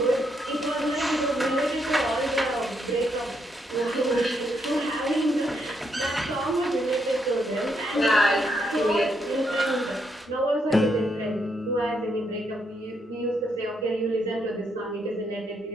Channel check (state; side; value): normal; both; correlation 0.77